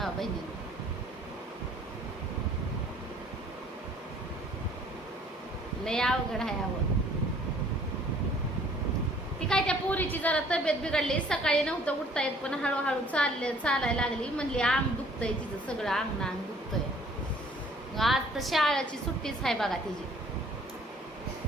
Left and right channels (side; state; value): both; normal; correlation 0.57